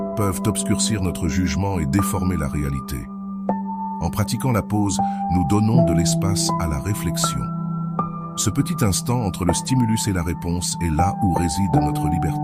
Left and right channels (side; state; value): both; identical; correlation 1.00